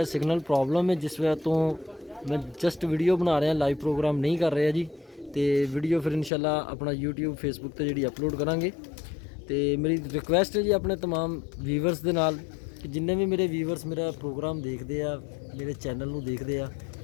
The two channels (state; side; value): drops out; right; at 6.3 s